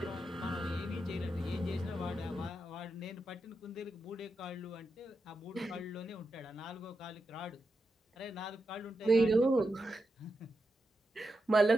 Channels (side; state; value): both; normal; correlation 0.88